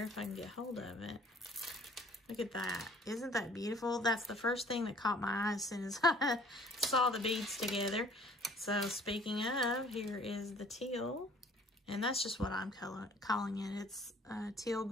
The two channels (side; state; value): both; normal; correlation 0.54